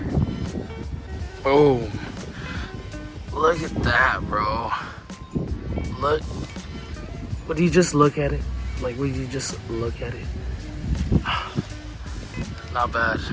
Boom. Look at that, bro. Look. Would you just look at it? Like, would you just look at it? Not bad.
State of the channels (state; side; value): identical; both; correlation 1.00